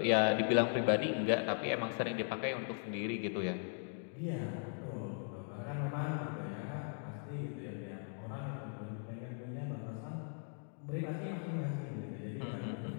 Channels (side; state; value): right; silent; 52 dB below the other